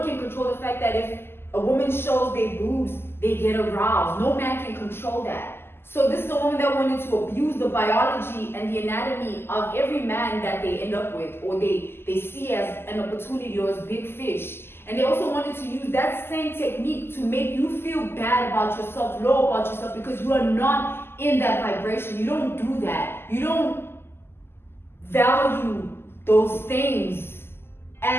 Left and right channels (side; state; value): right; late; 0.12 ms